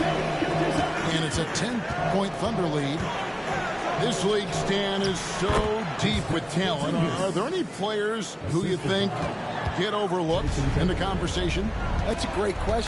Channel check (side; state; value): both; identical; correlation 1.00